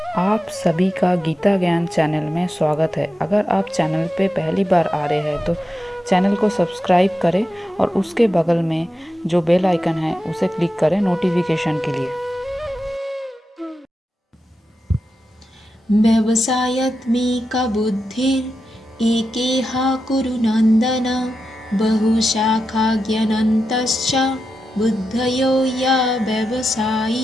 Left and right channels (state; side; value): normal; both; correlation 0.89